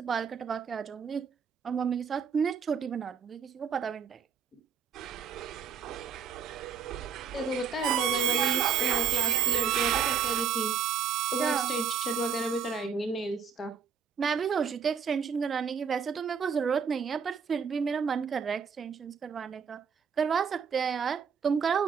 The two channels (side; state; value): left; quieter; 6.7 dB